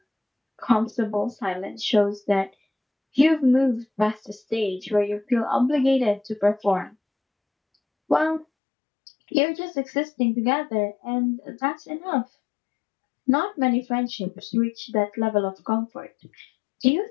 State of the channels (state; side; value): drops out; right; at 8.5 s